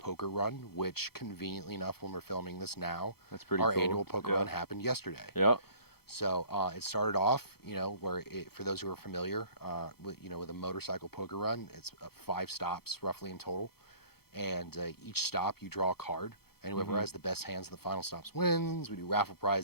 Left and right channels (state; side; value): late; right; 0.96 ms